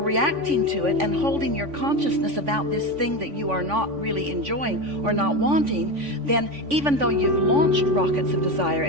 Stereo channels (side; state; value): left; late; 3.5 ms